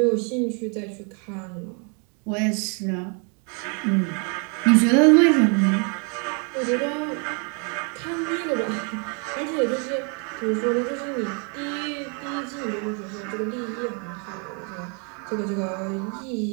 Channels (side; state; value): left; quieter; 37.4 dB